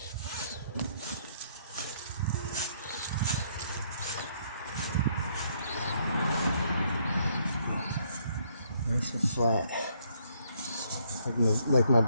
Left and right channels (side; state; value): both; inverted; correlation -0.69